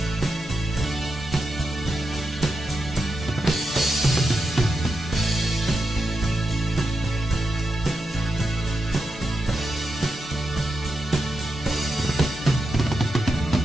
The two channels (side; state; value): both; normal; correlation 0.87